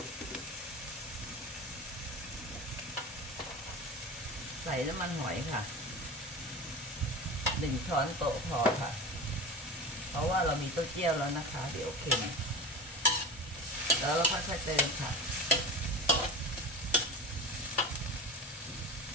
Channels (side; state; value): both; normal; correlation 0.31